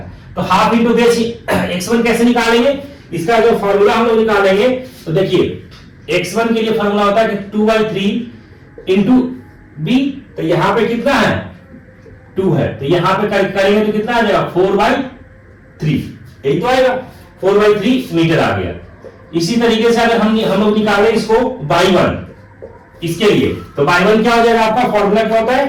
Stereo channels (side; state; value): both; identical; correlation 1.00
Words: तो हाफ इंटू बेस x1 कैसे निकालेंगे, इसका जो फॉर्मूला हम लोग निकालेंगे, तो देखिए x1 के लिए फॉर्मूला होता है कि 2/3 इंटू b, तो यहां पे कितना है 2 है, तो यहां पे करेंगे तो कितना आ जाएगा 4/3, यही तो आएगा 4/3 मीटर आ गया। इसी तरीके से अगर हम लोग निकालें इसको y1 इसके लिए, तो y1 क्या हो जाएगा, आपका फॉर्मूला क्या होता